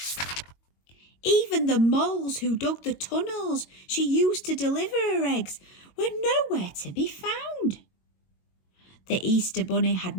Even the moles who dug the tunnels she used to deliver her eggs were nowhere to be found. The Easter Bunny had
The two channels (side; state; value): right; late; 22 ms